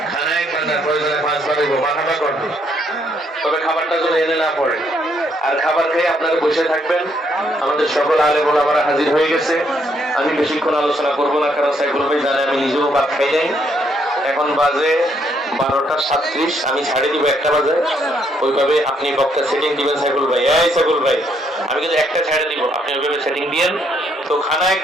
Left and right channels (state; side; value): normal; both; correlation 0.72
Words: খানায় বান্নার প্রয়োজনে 5 বার মাথাটা করবে, তবে খাবারটা যেন এনে না পড়ে। আর খাবার খেয়ে আপনারা বসে থাকবেন। আমাদের সকল আলেম ওলামারা হাজির হয়ে গেছে। আমি বেশিক্ষণ আলোচনা করবো না, কারণ সাইফুল ভাই জানে আমি নিজেও ভাত খাই নাই। এখন বাজে 12:37, আমি ছাড়ে দিব 1টা বাজে। ওইভাবে আপনি বক্তা সেটিং দিবেন সাইফুল ভাই। সাইফুল ভাই, আমি কিন্তু 1টা ছাড়ে দিব, আপনি ওইভাবে সেটিং দিয়েন। তো খানা